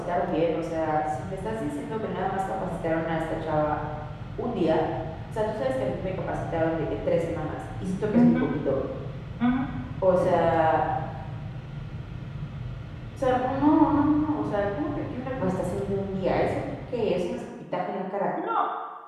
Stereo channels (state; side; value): identical; both; correlation 1.00